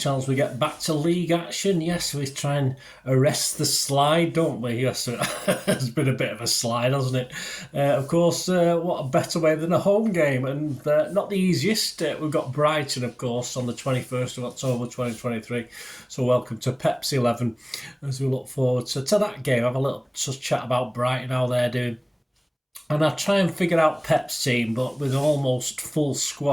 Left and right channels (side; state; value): both; identical; correlation 1.00